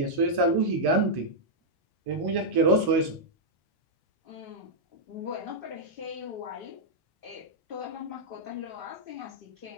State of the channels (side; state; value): left; late; 1.1 ms